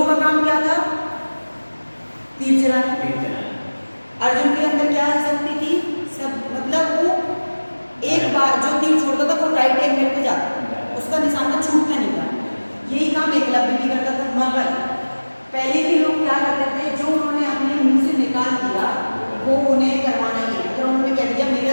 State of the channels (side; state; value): both; inverted; correlation -1.00